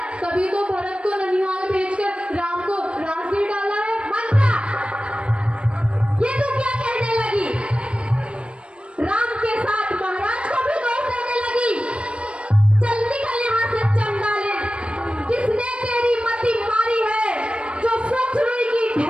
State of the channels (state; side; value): late; left; 0.058 ms